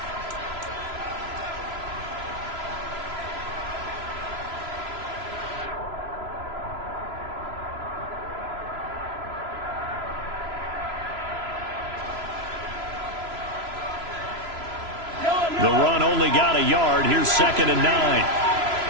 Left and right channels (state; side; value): late; left; 3.0 ms